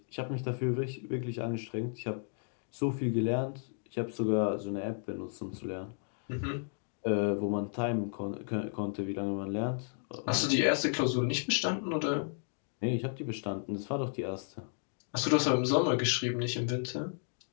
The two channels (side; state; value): right; silent; digital silence